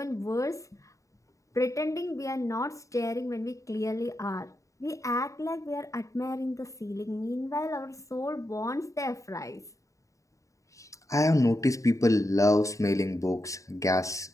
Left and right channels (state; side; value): late; right; 0.16 ms